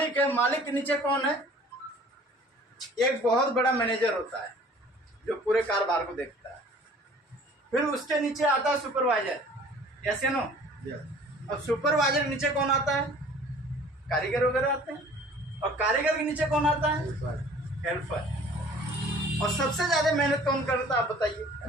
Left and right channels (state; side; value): normal; both; correlation 0.50